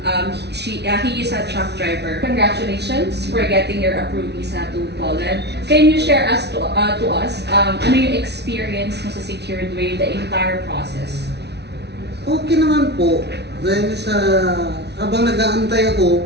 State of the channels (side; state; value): left; late; 0.49 ms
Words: He is a truck driver. Congratulations for getting your approved visa to Poland. Can you share to us ano yung experience mo sa secured way, the entire process? Okay naman po. Dahil sa habang nag-aantay